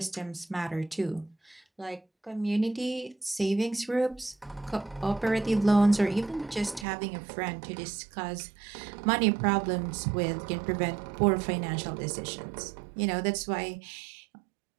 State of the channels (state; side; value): drops out; left; at 6.9 s